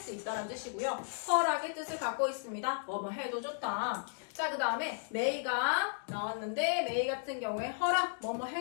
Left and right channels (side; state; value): right; silent; digital silence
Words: 있다라는 뜻이고요. 허락의 뜻을 갖고 있습니다. 뭐뭐 해도 좋다. 자, 그 다음에 may가 나왔는데 may 같은 경우에 허락, 뭐뭐